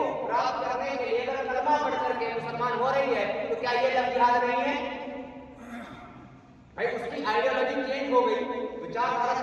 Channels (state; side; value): identical; both; correlation 1.00